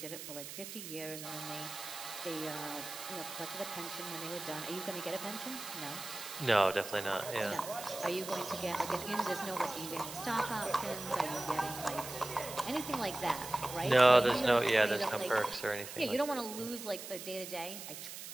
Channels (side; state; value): right; noise; hiss, 10 dB below the sound